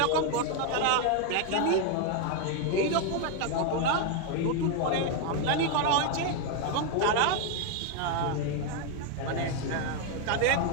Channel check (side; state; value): both; different; correlation 0.01